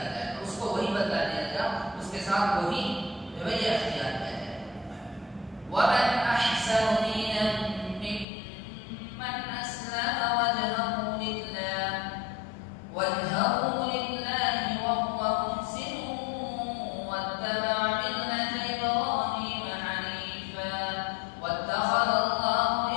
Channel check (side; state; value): right; drops out; at 8.2 s